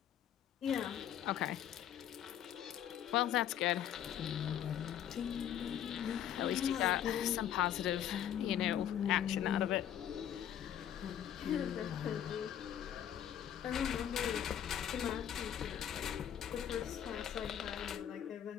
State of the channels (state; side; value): quieter; right; 10.2 dB